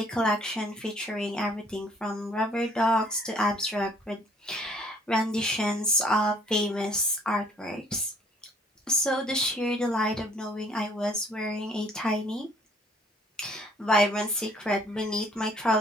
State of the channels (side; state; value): both; normal; correlation 0.59